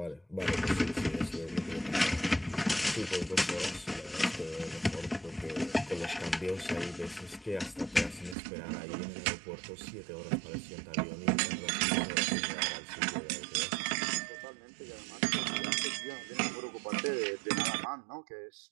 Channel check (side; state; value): left; drops out; at 8.3 s